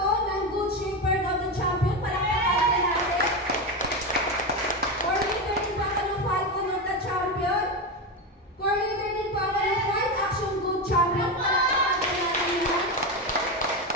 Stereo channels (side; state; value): both; normal; correlation 0.15